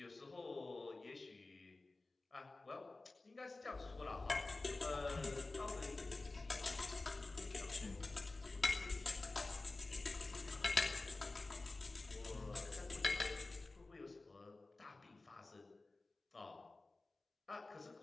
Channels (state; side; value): quieter; right; 3.3 dB